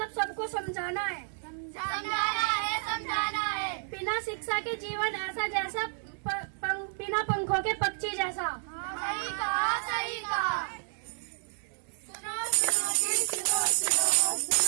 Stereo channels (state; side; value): silent; left; 57 dB below the other